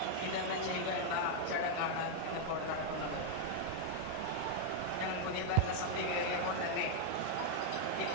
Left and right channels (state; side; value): different; both; correlation 0.00